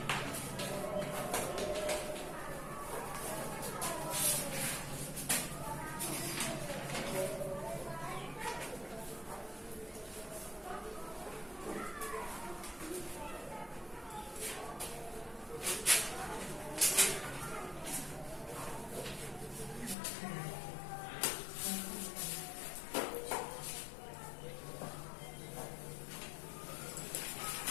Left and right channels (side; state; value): right; drops out; at 20.0 s